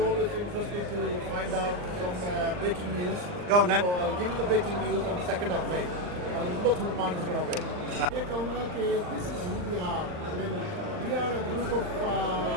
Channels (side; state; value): left; late; 39 ms